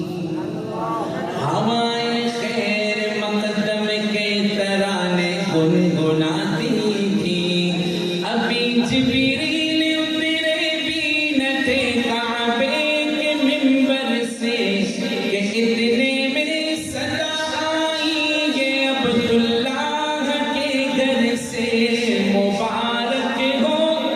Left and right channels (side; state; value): both; identical; correlation 1.00